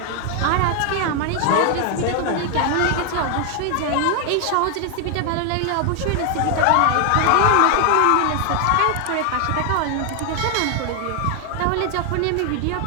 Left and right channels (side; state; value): both; different; correlation 0.00